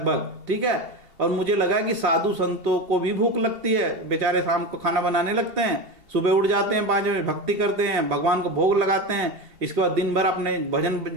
ठीक है, और मुझे लगा कि साधु संतों को भी भूख लगती है, बेचारे शाम को खाना बनाने लगते हैं, सुबह उठ जाते हैं 5 बजे, भक्ति करते हैं, भगवान को भोग लगाते हैं, इसके बाद दिन भर अपने भजन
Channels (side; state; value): left; late; 2.7 ms